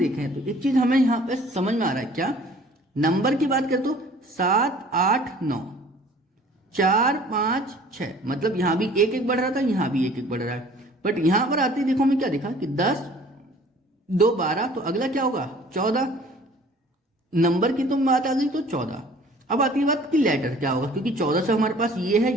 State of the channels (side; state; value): both; normal; correlation 0.51